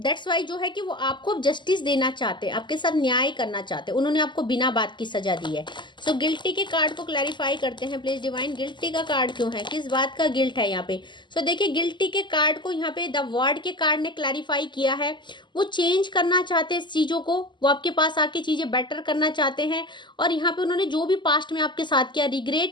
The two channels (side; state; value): right; late; 0.22 ms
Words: दैट्स वाई जो है कि वो आपको जस्टिस देना चाहते हैं, आपके साथ न्याय करना चाहते हैं। उन्होंने आपको बिना बात की सजा दी है। सो गिल्टी के कार्ड को क्लैरिफाई करते हैं प्लीज डिवाइन। गिल्टी का कार्ड क्यों है, किस बात का गिल्ट है यहाँ पे। सो देखिए गिल्टी के कार्ड को यहाँ पे द वर्ड के कार्ड ने क्लैरिफाई किया है। वो चेंज करना चाहते हैं इस चीजों को, वो आपके पास आके चीजें बेटर करना चाहते हैं और यहाँ पे उन्होंने जो भी पास्ट में आपके साथ किया